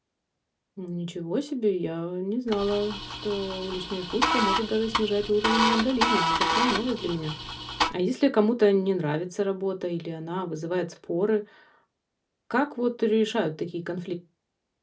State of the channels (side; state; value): both; identical; correlation 1.00